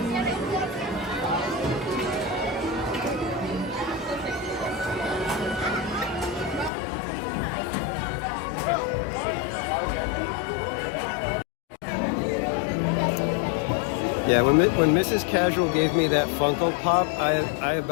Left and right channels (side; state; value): right; drops out; at 6.7 s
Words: Yeah, when Mrs. Casual gave me that Funko Pop, I